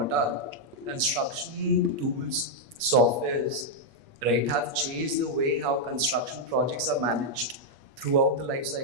construction tools, softwares, right, have changed the way how construction projects are managed throughout the life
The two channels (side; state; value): left; late; 8.5 ms